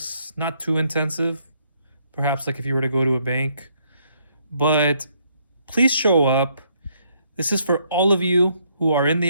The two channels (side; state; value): both; inverted; correlation -0.71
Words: not too intensive, perhaps like if you were to go to a bank. But please show up. This is for all of you who are in